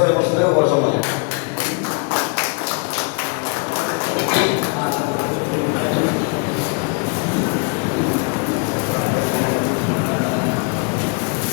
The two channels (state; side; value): quieter; right; 34.1 dB